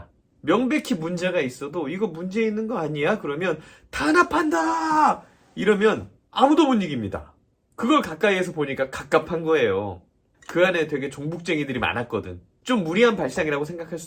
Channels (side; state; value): both; identical; correlation 1.00